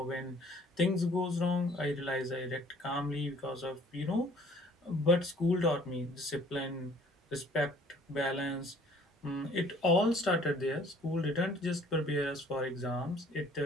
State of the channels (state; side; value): normal; both; correlation 0.56